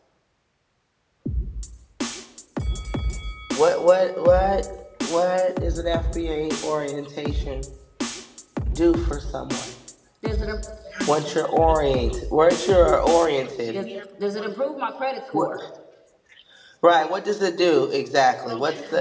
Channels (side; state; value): both; identical; correlation 1.00